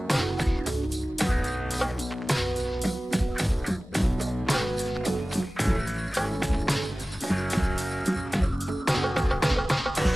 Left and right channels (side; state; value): both; normal; correlation 0.97